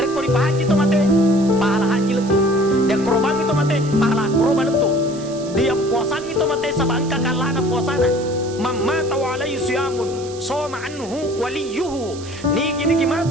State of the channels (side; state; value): right; noise; hiss, 17 dB below the sound